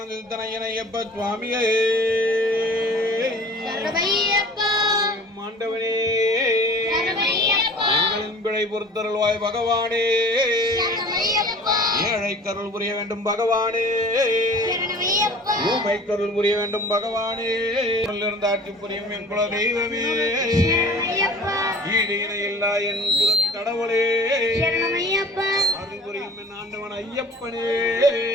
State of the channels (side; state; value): both; normal; correlation 0.45